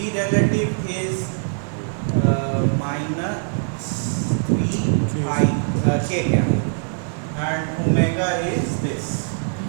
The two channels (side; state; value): left; silent; digital silence